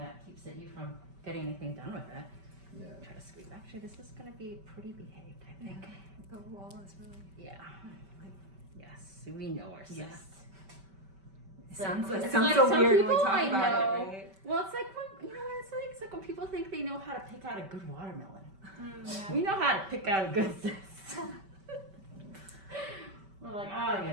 keeps you from getting anything done with it. Yeah. Try to squeeze. Actually, this is going to be pretty behaved, I think. The wall is really. Yeah. Yes, we know our cysts. Yeah. It's Sounds it's so some weird when we people talk I about know. it, right? Well, it's like when what it's like. It's like when people think they know how to pick out a good watermelon. Yeah. We know how to pick out a good cyst. We're like, oh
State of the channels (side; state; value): left; late; 5.2 ms